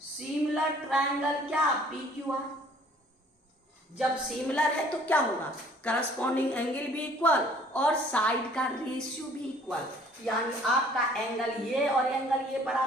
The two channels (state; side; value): normal; both; correlation 0.56